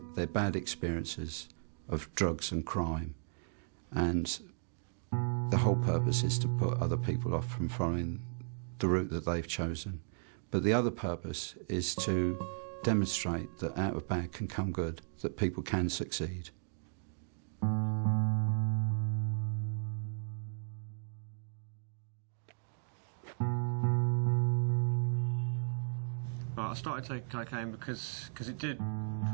bad experiences of drugs and crime, and the whole purpose is to put other people off from following the route that they've chosen. But the other purpose is to demonstrate that out of bad can come good, that people can succeed. I started taking cocaine because it did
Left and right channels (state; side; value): silent; left; digital silence